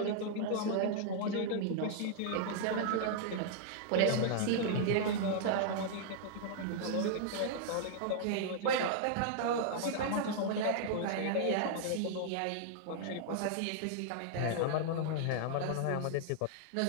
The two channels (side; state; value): both; different; correlation -0.01